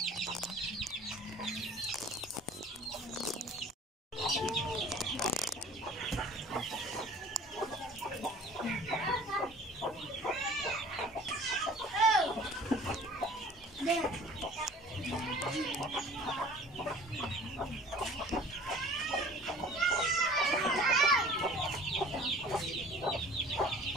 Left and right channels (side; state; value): both; normal; correlation 0.48